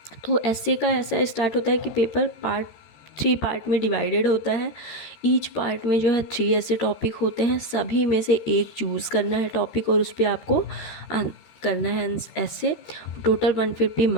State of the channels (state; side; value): late; right; 13 ms